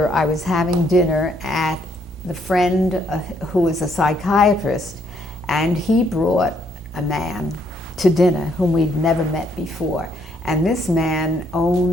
I was having dinner at the friend who was a psychiatrist, and he brought a man to dinner whom we'd never met before. And this man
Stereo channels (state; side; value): normal; both; correlation 0.70